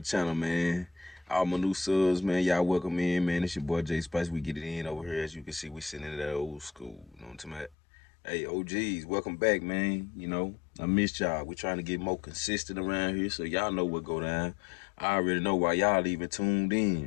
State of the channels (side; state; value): right; drops out; at 7.8 s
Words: channel, man. All my new subs, man, y'all welcome in, man. It's your boy J Spice. We get it in over here. As you can see, we sitting in that old school. You know what I'm talking about? Hey, OGs, welcome back, man. You know, I missed y'all. We're trying to get more consistent around here, so y'all know what go down. I already know why y'all even tuned